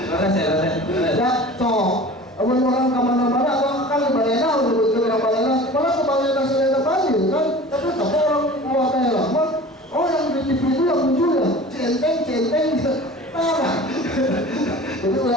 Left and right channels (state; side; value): normal; both; correlation 0.40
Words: Ya, cok. Orang kemana-mana, kan Balena udah betul orang Balena. Malah ke Balena selain banjir kan, tapi tak orang luar daerah mah. Oh yang di TV itu yang muncul ya, centeng, parah. Jadi